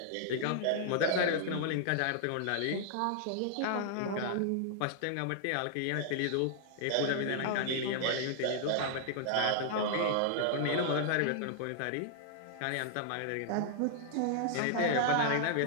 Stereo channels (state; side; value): different; both; correlation -0.01